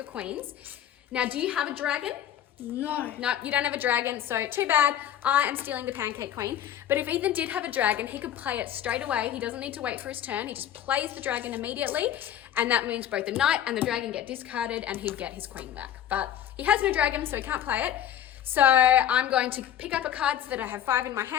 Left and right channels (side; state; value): right; quieter; 10.7 dB